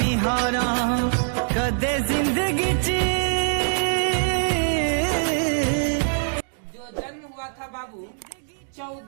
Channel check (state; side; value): silent; left; digital silence